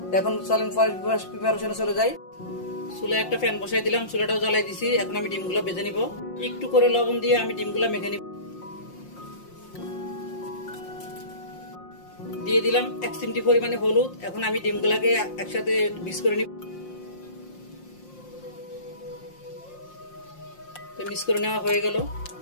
এখন চলেন প্রিপারেশনে চলে যাই। চুলায় একটা ফ্যান বসাই দিলাম, চুলাটাও জ্বালাই দিছি। এখন আমি ডিমগুলো ভেজে নিব। একটু করে লবণ দিয়ে আমি ডিমগুলো মেখে নিব। দিয়ে দিলাম 1 চিমটি পরিমাণে হলুদ। এখন আমি ডিমগুলোকে একসাথে মিক্স করে নিব। তো মিক্স করে নেওয়া হয়ে গেল।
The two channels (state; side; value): late; right; 5.7 ms